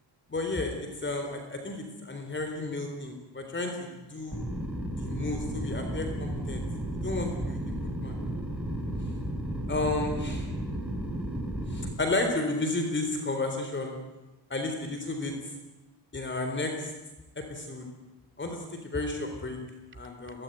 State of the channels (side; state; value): both; normal; correlation 0.34